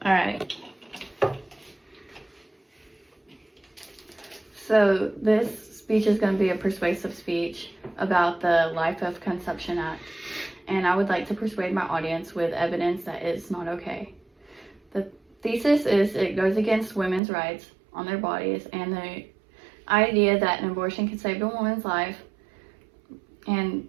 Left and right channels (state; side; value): drops out; left; at 17.2 s